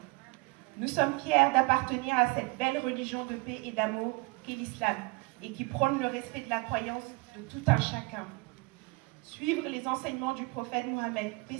Nous sommes fiers d'appartenir à cette belle religion de paix et d'amour qu'est l'islam et qui prône le respect de la croyance de tout un chacun. Suivre les enseignements du prophète Mohammed, paix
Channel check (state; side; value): quieter; left; 26.2 dB